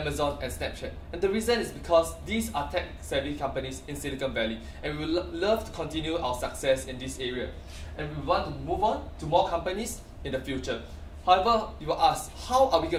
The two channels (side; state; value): both; identical; correlation 1.00